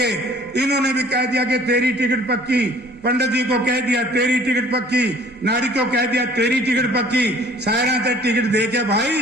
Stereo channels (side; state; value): both; normal; correlation 0.53